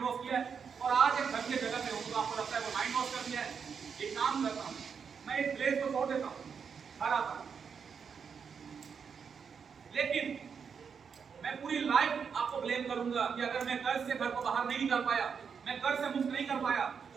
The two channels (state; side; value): quieter; left; 6.4 dB